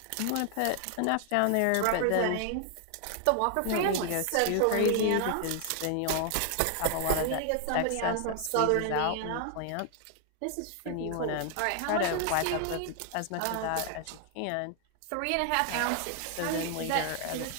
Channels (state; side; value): different; both; correlation 0.00